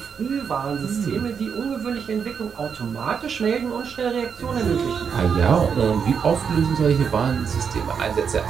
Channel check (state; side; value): quieter; left; 6.7 dB